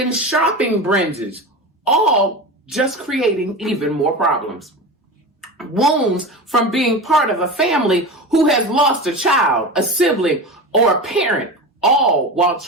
shopping binges, all just creating even more problems. Wounds from being part of a family who has lost a child, a sibling, or a parent, all while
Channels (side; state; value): both; normal; correlation 0.27